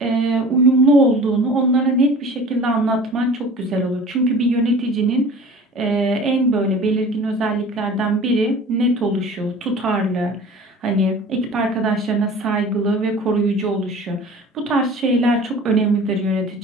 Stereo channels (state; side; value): normal; both; correlation 0.42